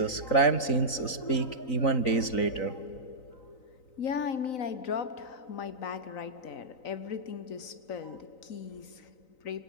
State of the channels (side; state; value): right; late; 3.9 ms